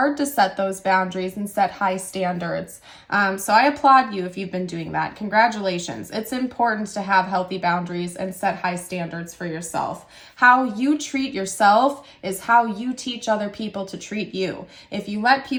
to set those boundaries and set high standards. So I applaud you if you've been doing that. Congratulations. It's important to have healthy boundaries and set high standards for yourself. How you treat yourself is how you teach other people to treat you. If you let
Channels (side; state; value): both; identical; correlation 1.00